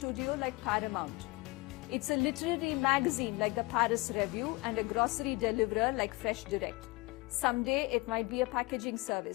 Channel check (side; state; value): right; quieter; 23.8 dB